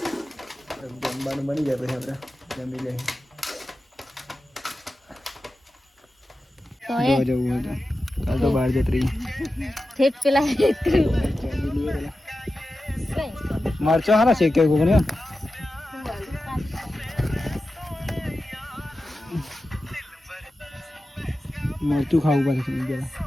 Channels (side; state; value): both; normal; correlation 0.93